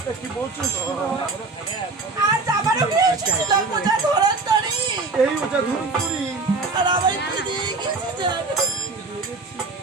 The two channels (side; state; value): left; quieter; 3.8 dB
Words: কি বলছো আজ আমারও এসেছিল ওজা ধরন্তরী এই ওজা ধরন্তরী আর আমার কি দিয়ে গেছে জানো